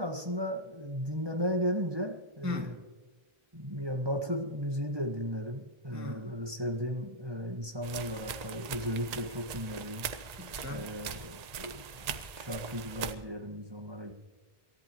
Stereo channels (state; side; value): late; left; 1.8 ms